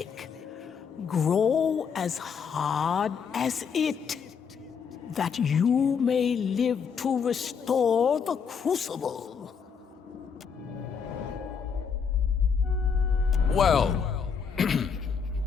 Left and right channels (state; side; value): quieter; right; 6.4 dB